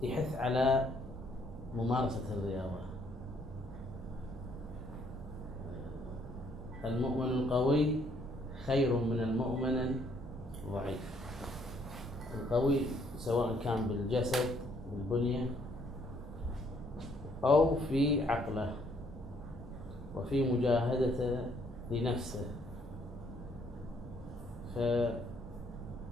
يحث على ممارسة الرياضة. المؤمن القوي خير من المؤمن الضعيف. القوي سواء كان بالجسد بالبنية أو في عقله وفي مجاهدته لنفسه. فجهاد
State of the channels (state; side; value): normal; both; correlation 0.67